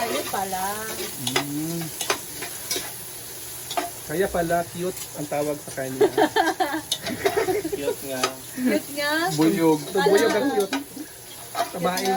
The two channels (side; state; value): both; identical; correlation 1.00